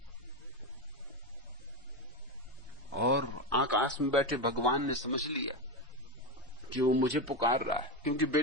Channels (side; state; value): both; normal; correlation 0.14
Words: और आकाश में बैठे भगवान ने समझ लिया कि वो मुझे पुकार रहा है, क्योंकि